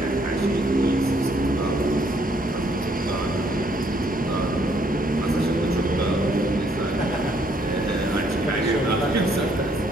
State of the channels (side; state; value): both; normal; correlation 0.68